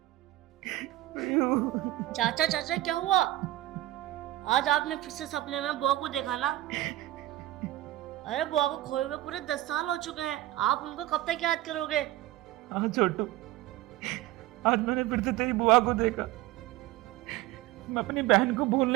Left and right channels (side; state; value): left; quieter; 15.9 dB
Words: चाचा चाचा क्या हुआ? आज आपने फिर से सपने में बुआ को देखा ना? अरे बुआ को खोए हुए पूरे 10 साल हो चुके हैं, आप उनको कब तक याद करोगे? हाँ छोटू, आज मैंने फिर से तेरी बुआ को देखा। मैं अपनी बहन को भूल